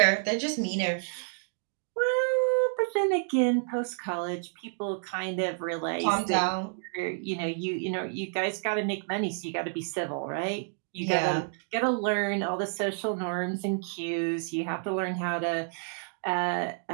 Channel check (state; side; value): silent; left; 58 dB below the other